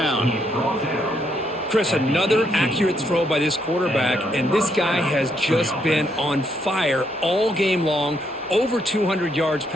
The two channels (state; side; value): normal; both; correlation 0.75